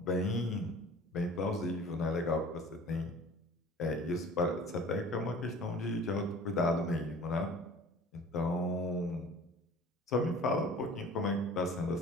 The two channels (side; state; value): both; normal; correlation 0.45